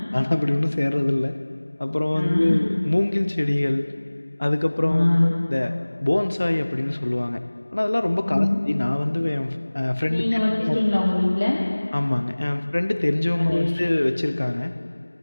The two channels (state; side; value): inverted; both; correlation -1.00